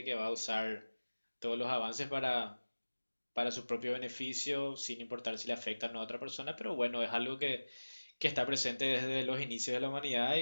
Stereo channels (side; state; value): both; inverted; correlation -1.00